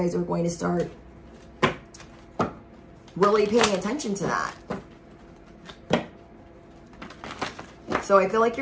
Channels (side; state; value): both; identical; correlation 1.00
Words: are going to start really paying attention to that. So I feel like